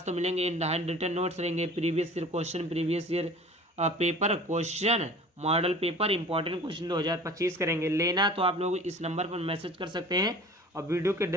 तो मिलेंगे, इन हैंड रिटन नोट्स रहेंगे, previous year question, previous year paper question, model paper, important question 2025 करेंगे। लेना तो आप लोग इस नंबर पर मैसेज कर सकते हैं, और वीडियो के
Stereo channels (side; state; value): both; normal; correlation 0.43